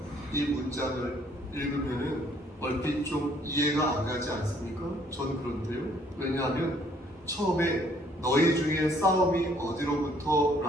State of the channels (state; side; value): normal; both; correlation 0.63